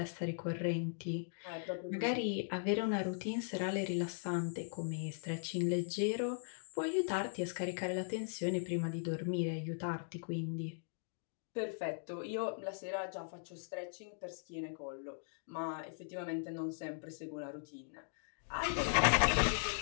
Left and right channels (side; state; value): right; silent; digital silence